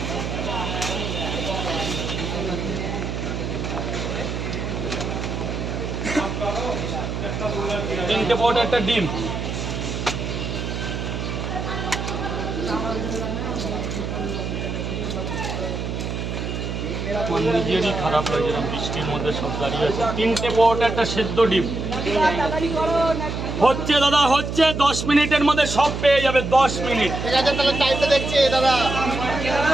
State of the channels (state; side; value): noise; right; hum, 4 dB below the sound